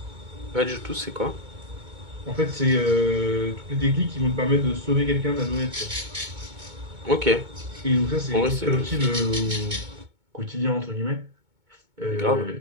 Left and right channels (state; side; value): late; left; 2.2 ms